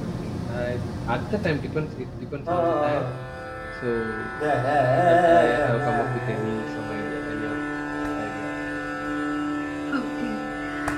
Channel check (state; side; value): identical; both; correlation 1.00